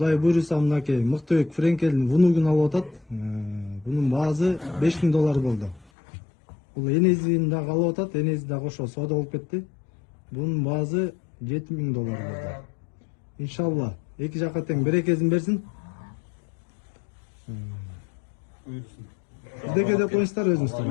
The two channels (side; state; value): right; drops out; at 5.9 s